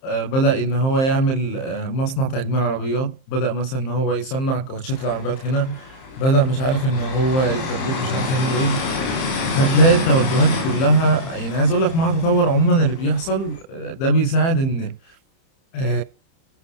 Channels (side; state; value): right; late; 30 ms